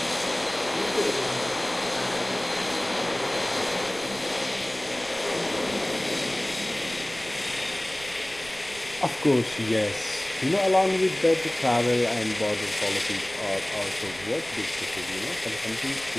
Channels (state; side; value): noise; right; rumble, 19 dB below the sound